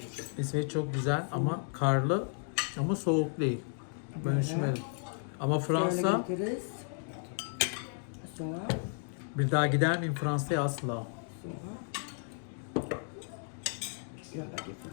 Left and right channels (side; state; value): right; silent; 56 dB below the other